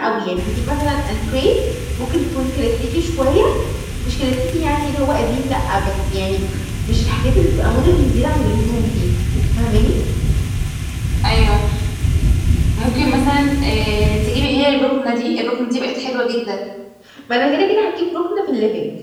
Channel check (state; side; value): identical; both; correlation 1.00